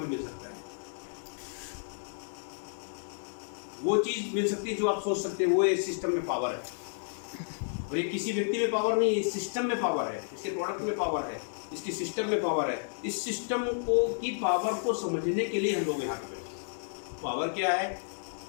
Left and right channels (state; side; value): silent; right; digital silence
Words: मिल सकता है। वो चीज़ मिल सकती है जो आप सोच सकते हैं, वो इस सिस्टम में पावर है। और ये किसी व्यक्ति में पावर नहीं, इस सिस्टम में पावर है, इसके प्रोडक्ट में पावर है, इसकी सिस्टम में पावर है। इस सिस्टम को की पावर को समझने के लिए हम लोग यहाँ पे बैठे। पावर क्या है,